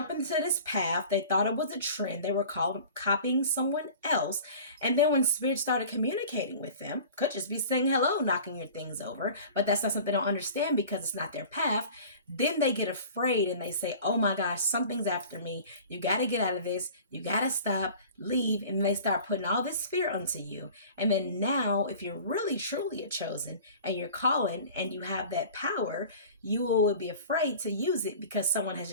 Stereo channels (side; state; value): both; inverted; correlation -0.42